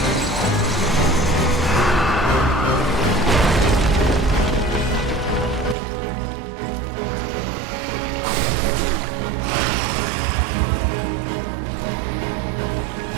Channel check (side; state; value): left; drops out; at 5.8 s